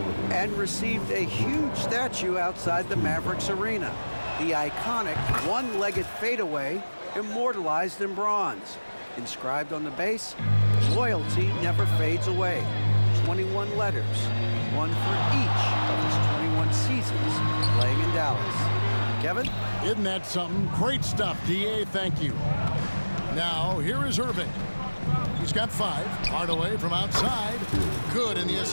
and received a huge statue outside the Mavericks arena. The iconic one-legged fadeaway immortalized in bronze. Inscribed on the base, loyalty never fades away. 21 letters, one for each of his 21 seasons playing in Dallas. Kevin? Isn't that something? Great stuff, D.A. Thank you. Now, here is Irving. He's got 5. Hardaway from outside. Good, and the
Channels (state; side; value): inverted; both; correlation -1.00